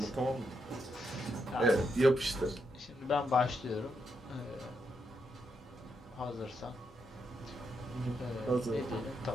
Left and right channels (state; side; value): normal; both; correlation 0.81